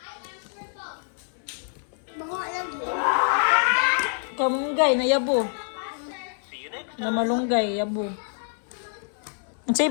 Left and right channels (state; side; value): silent; right; 61 dB below the other